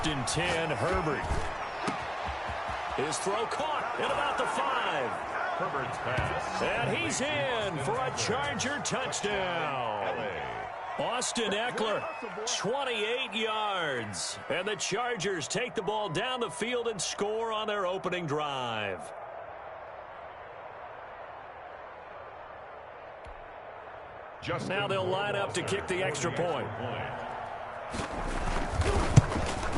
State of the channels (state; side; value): identical; both; correlation 1.00